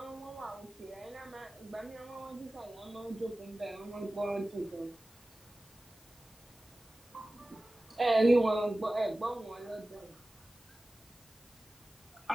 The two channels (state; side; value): normal; both; correlation 0.97